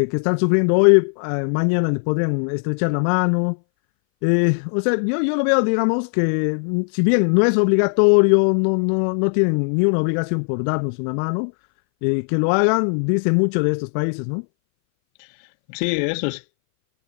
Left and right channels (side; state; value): right; silent; 62 dB below the other